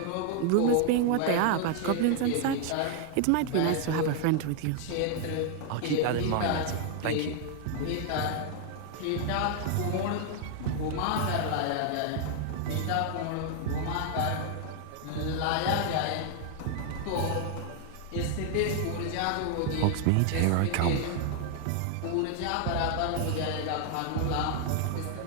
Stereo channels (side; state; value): both; different; correlation 0.00